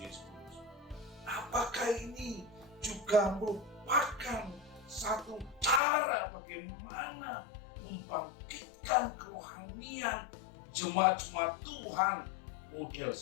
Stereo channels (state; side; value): drops out; right; at 5.8 s